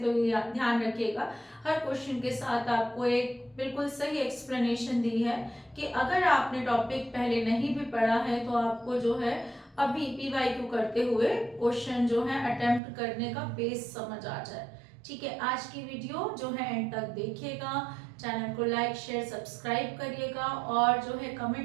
तो ये ध्यान रखिएगा हर क्वेश्चन के साथ आपको एक बिल्कुल सही एक्सप्लेनेशन दी है कि अगर आपने टॉपिक पहले नहीं भी पढ़ा है तो आपको जो है अभी PYQ करते हुए क्वेश्चन जो है अटेम्प्ट करने का बेस समझ आ जाए। ठीक है, आज की वीडियो जो है एंड तक देखिएगा, चैनल को लाइक शेयर सब्सक्राइब करिएगा, और जो है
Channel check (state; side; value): drops out; left; at 12.8 s